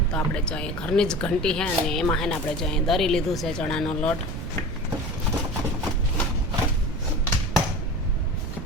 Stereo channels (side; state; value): right; noise; rumble, 7 dB below the sound